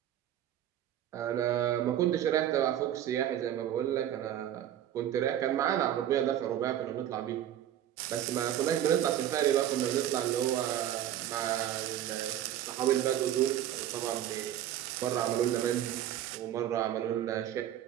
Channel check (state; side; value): quieter; left; 11.5 dB